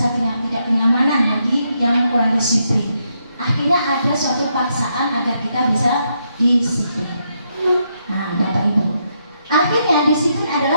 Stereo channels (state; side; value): inverted; both; correlation -0.79